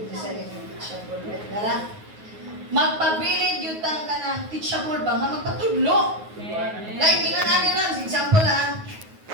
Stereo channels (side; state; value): left; late; 9.4 ms